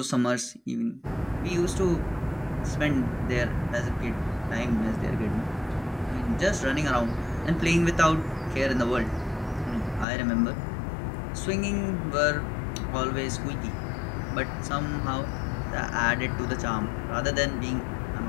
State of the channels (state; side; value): drops out; right; at 10.1 s